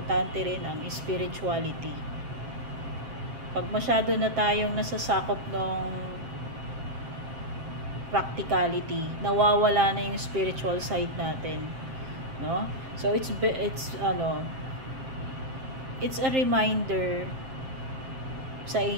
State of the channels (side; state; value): left; late; 7.6 ms